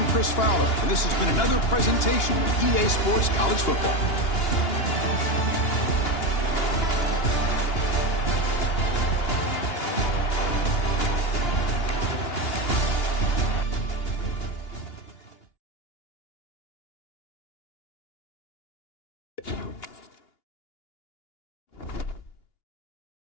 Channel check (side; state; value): right; late; 2.8 ms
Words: Chris Fowler, and this has been another presentation of EA Sports College Football.